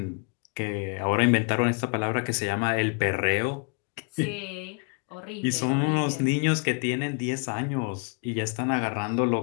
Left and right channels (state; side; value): quieter; right; 37.4 dB